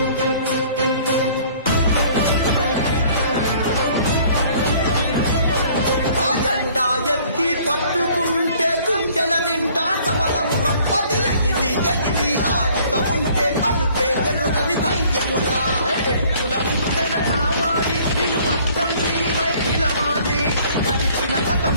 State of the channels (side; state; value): both; inverted; correlation -0.56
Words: పట్టుకుంటే గుండెల నిండా సమలము రప్పది ఎగిలి ఎగిలి ఆడుతూ ఉంటే అలుపే ఎరుగని ధైర్యమురా ఉత్తర కావాలి నిలువత్తం నీవై నిలవాలి గడిచిన